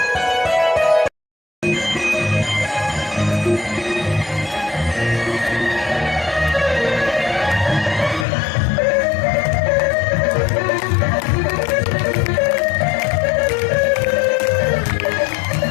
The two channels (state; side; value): drops out; right; at 8.2 s